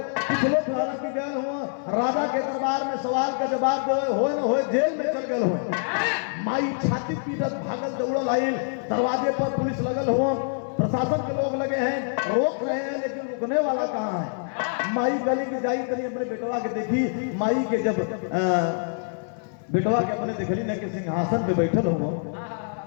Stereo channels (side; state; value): right; silent; digital silence